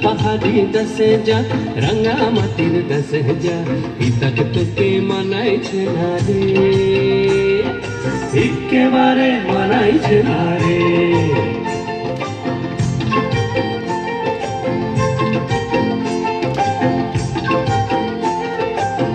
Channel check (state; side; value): identical; both; correlation 1.00